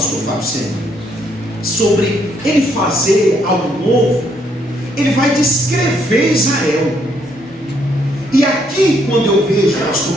Fábio Sena, sobre ele fazer algo novo, ele vai descrever Israel. E aqui, quando eu vejo,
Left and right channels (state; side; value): normal; both; correlation 0.71